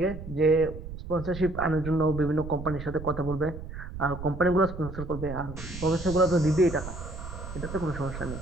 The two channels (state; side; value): noise; right; rumble, 10 dB below the sound